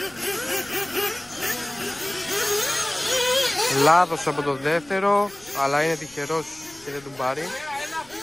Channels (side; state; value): left; noise; rumble, 25 dB below the sound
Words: Λάθος από το δεύτερο, αλλά είναι τυχερός και δεν τον πάρει.